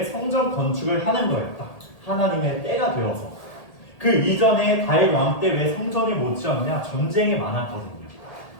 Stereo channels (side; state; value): right; late; 1.8 ms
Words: 성전 건축을 하는 거예요. 딱 하나님의 때가 되어서. 그 이전에 다윗 왕 때 왜 성전이 못 지었냐? 전쟁이 많았거든요.